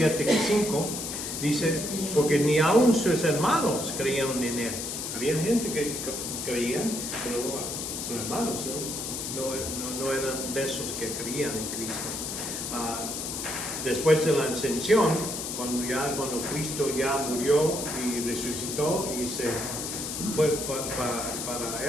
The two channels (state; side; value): noise; left; hiss, 5 dB below the sound